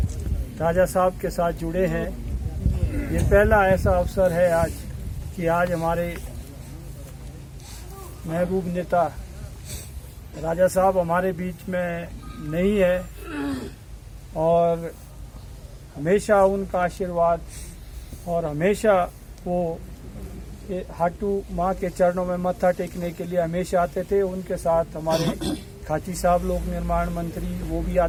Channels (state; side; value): identical; both; correlation 1.00